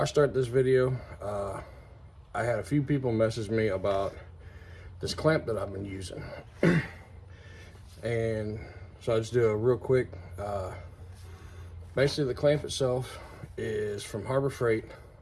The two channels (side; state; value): both; identical; correlation 1.00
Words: I start this video, I had a few people message me about this clamp that I've been using. And so I'll just do a real quick. Basically, the clamp itself is from Harbor Freight.